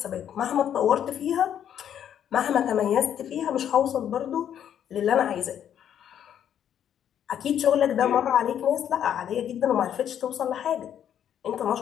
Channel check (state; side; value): quieter; right; 9.7 dB